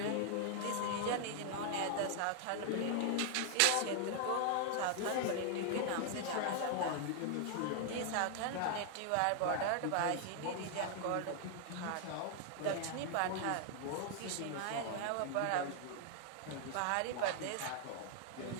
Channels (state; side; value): different; both; correlation 0.00